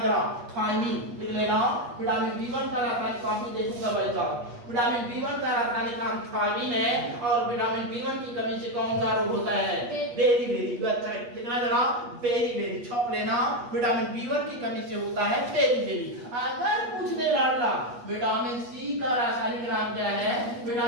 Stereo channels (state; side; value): late; left; 8.4 ms